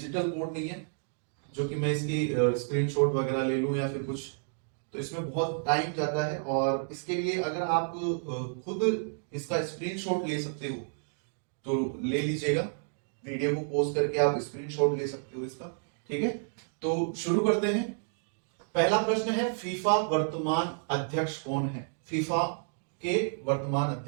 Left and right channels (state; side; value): silent; left; digital silence